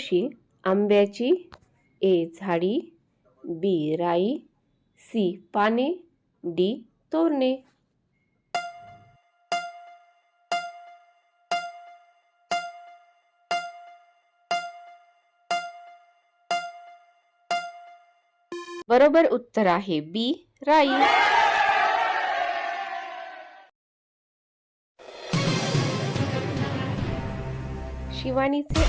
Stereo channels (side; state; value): both; identical; correlation 1.00